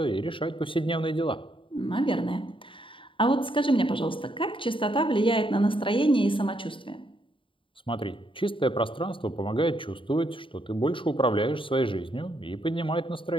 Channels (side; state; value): right; late; 0.25 ms